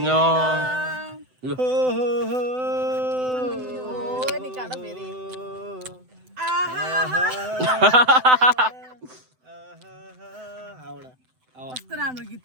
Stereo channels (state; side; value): late; left; 7.9 ms